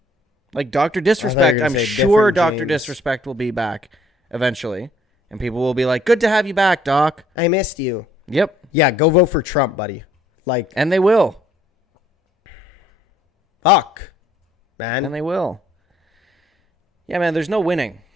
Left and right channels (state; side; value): normal; both; correlation 0.63